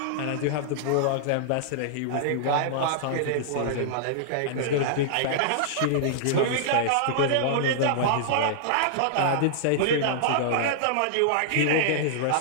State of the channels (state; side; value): different; both; correlation -0.02